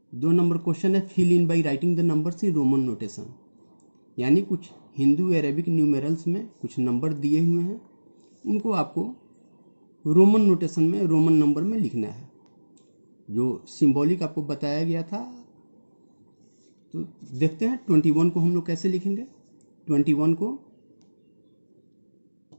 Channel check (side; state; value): both; inverted; correlation -1.00